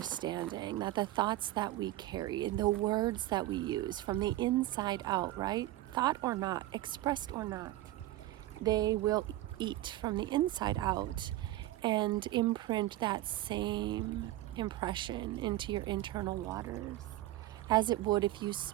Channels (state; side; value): quieter; left; 15.7 dB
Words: that the thoughts that we carry and the words that we use from the inside out, right? Thought or not, expressed or not, they will eat from the inside out and imprint that same impression into your internal waters, as it would if you